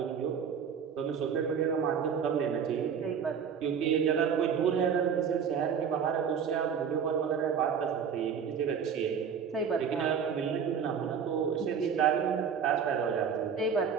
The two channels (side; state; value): left; quieter; 7.1 dB